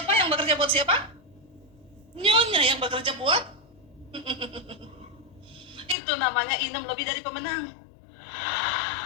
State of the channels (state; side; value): drops out; right; at 6.0 s